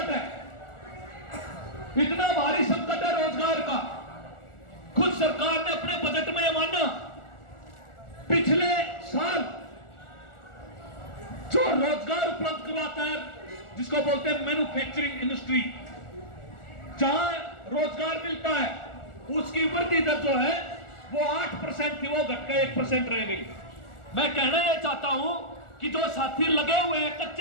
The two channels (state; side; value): late; right; 1.4 ms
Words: है, इतना भारी संकट है रोजगार का। खुद सरकार ने अपने बजट में माना, पिछले साल जो रोजगार उपलब्ध करवाता है, जिसको बोलते हैं मैन्युफैक्चरिंग इंडस्ट्री, जहां रोजगार मिलता है, उसकी वृद्धि दर जो है वो 8% थी, वो घटकर 1% रह गई। मैं कहना यह चाहता हूं कि जो साथी लगे हुए हैं